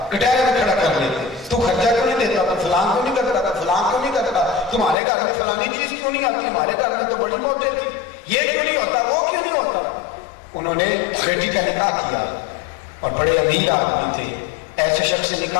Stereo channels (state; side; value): drops out; right; at 5.0 s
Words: کٹہرے میں کھڑا کر لیتے، تو خرچہ کیوں نہیں دیتا، تو فلان کیوں نہیں کرتا، تو فلان کیوں نہیں کرتا، تمہارے گھر میں فلانی چیز کیوں نہیں آتی، ہمارے گھر میں تو بڑی موجود تھی، یہ کیوں نہیں ہوتا، وہ کیوں نہیں ہوتا۔ انہوں نے بیٹی کا نکاح کیا اور بڑے امیر آدمی تھے، ایسے شخص سے